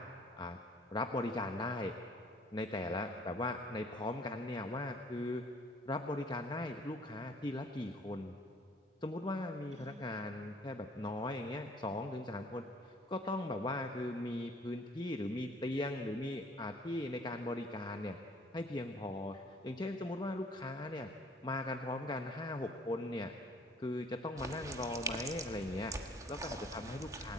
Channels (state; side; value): normal; both; correlation 0.56